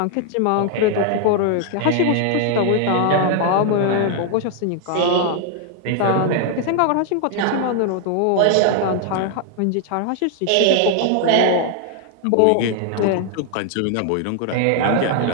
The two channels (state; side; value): different; both; correlation 0.00